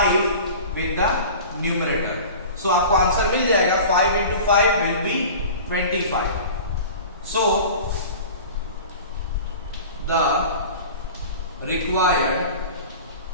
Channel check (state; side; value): inverted; both; correlation -0.38